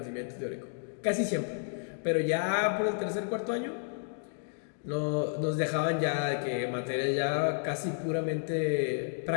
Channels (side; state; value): right; silent; digital silence